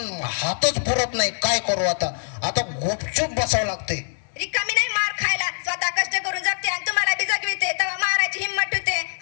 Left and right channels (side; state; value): right; silent; 63 dB below the other